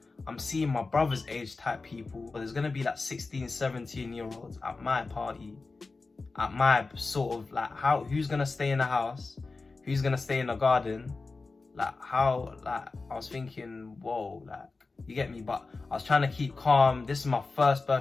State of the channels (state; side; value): quieter; right; 3.8 dB